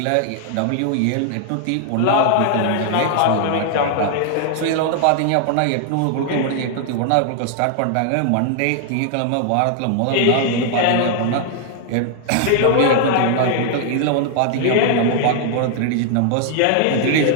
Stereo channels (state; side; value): different; both; correlation 0.00